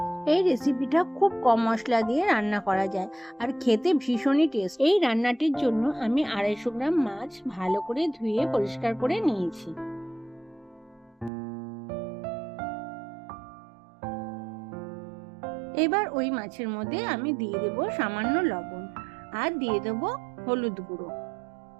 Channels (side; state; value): left; drops out; at 11.3 s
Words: এই রেসিপিটা খুব কম মশলা দিয়ে রান্না করা যায় আর খেতে ভীষণই টেস্ট। এই রান্নাটির জন্য আমি 250 গ্রাম মাছ ভালো করে ধুয়ে পরিষ্কার করে নিয়েছি। এবার ওই মাছের মধ্যে আমি দিয়ে দেব সামান্য লবণ আর দিয়ে দেব হলুদ গুঁড়ো।